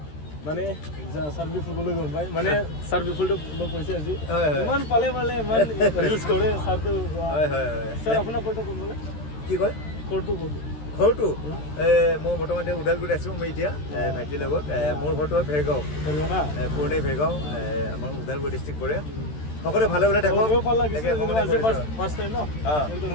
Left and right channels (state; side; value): late; right; 13 ms